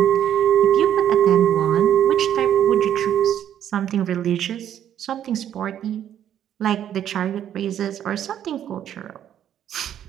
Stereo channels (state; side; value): quieter; left; 10.3 dB